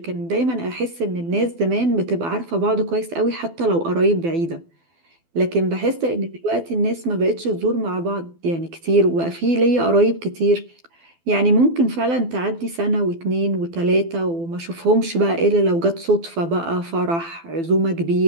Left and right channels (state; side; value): late; left; 12 ms